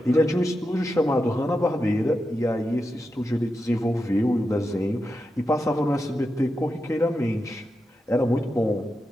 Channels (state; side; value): normal; both; correlation 0.89